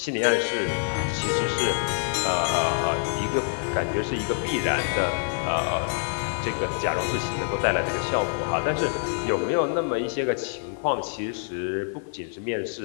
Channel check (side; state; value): right; silent; digital silence